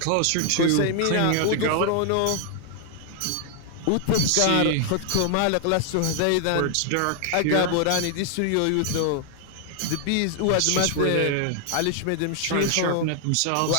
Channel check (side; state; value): both; different; correlation 0.00